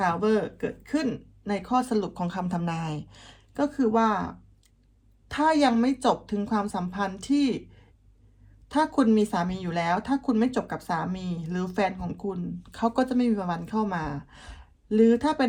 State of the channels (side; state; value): both; identical; correlation 1.00